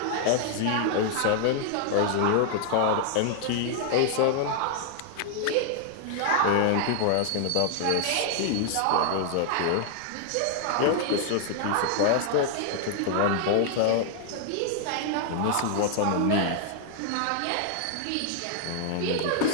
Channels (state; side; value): different; both; correlation 0.00